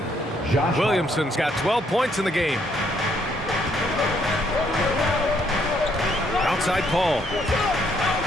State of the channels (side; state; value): both; normal; correlation 0.70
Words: Williamson's got 12 points in the game. Outside Paul.